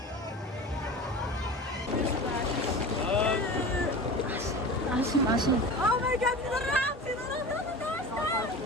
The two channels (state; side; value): normal; both; correlation 0.33